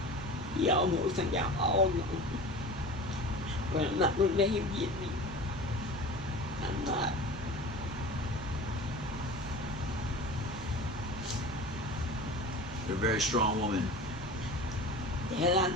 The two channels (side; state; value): both; normal; correlation 0.36